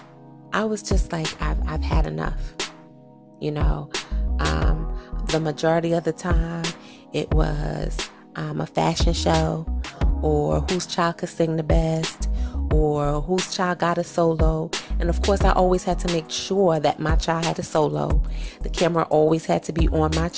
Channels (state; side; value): identical; both; correlation 1.00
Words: I was just like, I've had enough. The majority of the time it was a fashion show, or whose child could sing the best, or whose child got a solo. And of course, I always had to make sure that my child had a solo. The camera always had to be on my